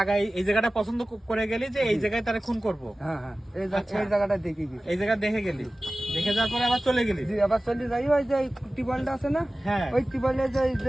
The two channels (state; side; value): normal; both; correlation 0.97